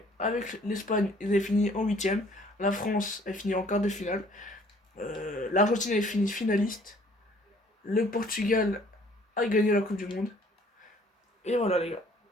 avec l'Espagne, ils avaient fini en huitième. La France a fini en quart de finale. L'Argentine avait fini finaliste. Le Portugal a gagné la Coupe du Monde. Et voilà, les gars.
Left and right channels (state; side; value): normal; both; correlation 0.58